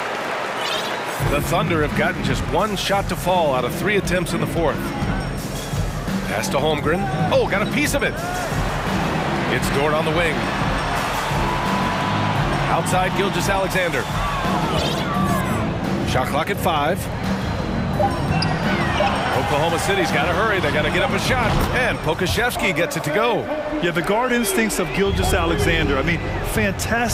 The Thunder have gotten just one shot to fall out of 3 attempts in the fourth. Pass to Holmgren. Oh, got a piece of it. It's Dort on the wing. Outside Gilgeous-Alexander. Shot clock at 5. Oklahoma City's got to hurry. They got to get up a shot. And Pokashevsky gets it to go. Yeah, the guard instincts of Gilgeous-Alexander. I mean,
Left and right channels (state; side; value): identical; both; correlation 1.00